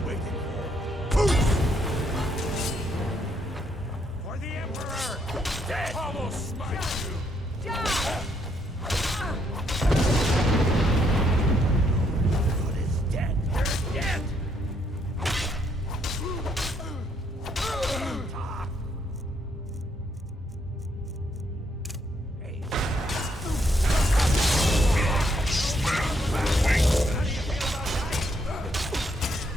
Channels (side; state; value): both; normal; correlation 0.73